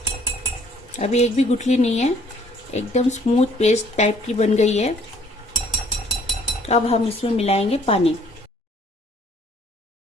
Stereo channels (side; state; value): both; normal; correlation 0.60